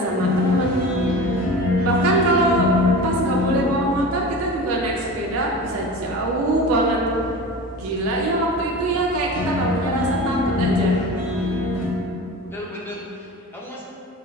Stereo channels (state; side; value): normal; both; correlation 0.33